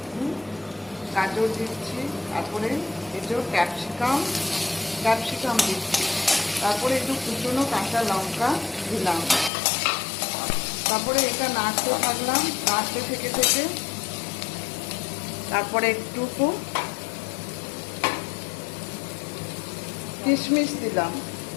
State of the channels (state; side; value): drops out; right; at 9.5 s